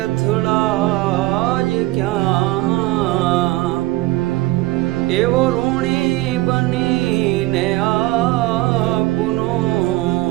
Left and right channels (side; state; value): left; quieter; 18.8 dB